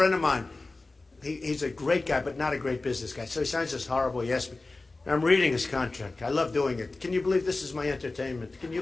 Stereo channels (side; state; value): right; quieter; 3.3 dB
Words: of mine, he's a great guy, but not a great business guy. So he signs this horrible. He asked me, I'm reading his contract. I love doing it. Can you believe this is my entertainment? Can you